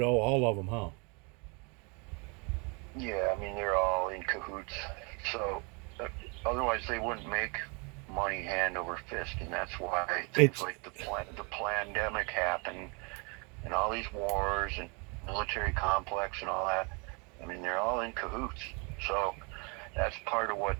all of them, huh? Yeah, I mean, they're all in cahoots. So otherwise they wouldn't make money hand over fist, and that's why things It's like the pandemic happened, and all these wars and military complex and all that. I mean, they're all in cahoots. So that's part of what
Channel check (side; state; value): left; quieter; 32.3 dB